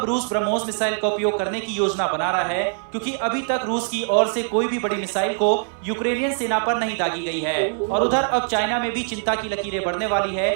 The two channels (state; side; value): silent; left; 64 dB below the other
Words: रूस ब्रह्मोस मिसाइल का उपयोग करने की योजना बना रहा है? क्योंकि अभी तक रूस की ओर से कोई भी बड़ी मिसाइल को यूक्रेनियन सेना पर नहीं दागी गई है। और उधर अब चाइना में भी चिंता की लकीरें बढ़ने वाली है,